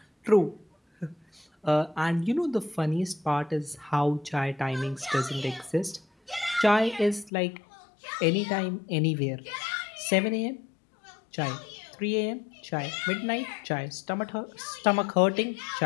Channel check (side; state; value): right; drops out; at 7.3 s